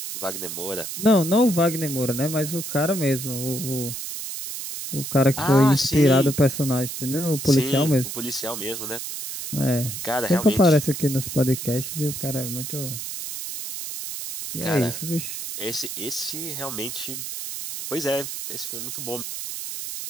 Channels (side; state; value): right; noise; hiss, 7 dB below the sound